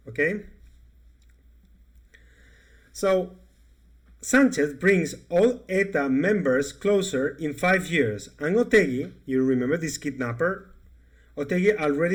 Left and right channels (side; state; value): both; identical; correlation 1.00